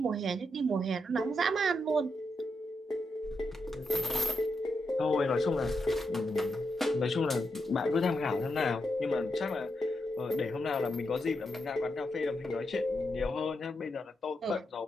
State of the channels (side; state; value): both; normal; correlation 0.83